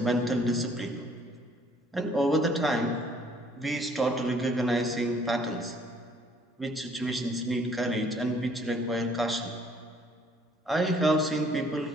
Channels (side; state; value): both; normal; correlation 0.61